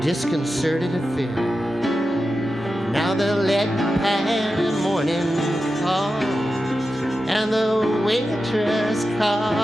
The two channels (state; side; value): normal; both; correlation 0.91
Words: affair. Now the lead pan morning calls, and the waitress